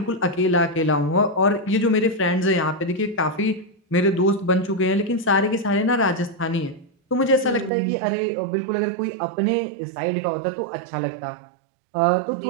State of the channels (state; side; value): drops out; left; at 7.7 s